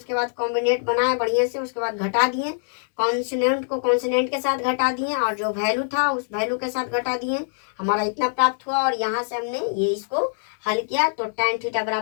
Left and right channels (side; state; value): right; silent; digital silence